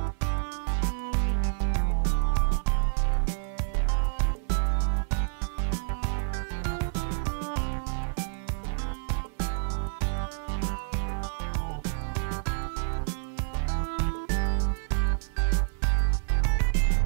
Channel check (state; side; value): silent; left; 59 dB below the other